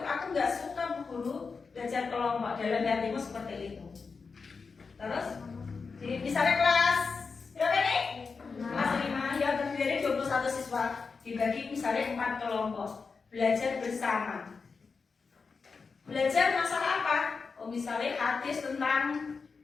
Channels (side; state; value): right; quieter; 4.9 dB